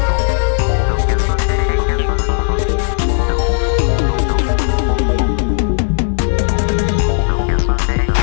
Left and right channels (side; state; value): right; silent; digital silence